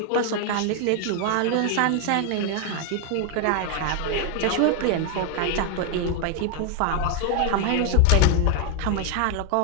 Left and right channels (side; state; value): both; different; correlation 0.00